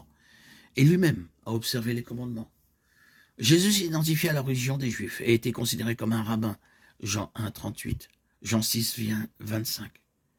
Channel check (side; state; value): both; identical; correlation 1.00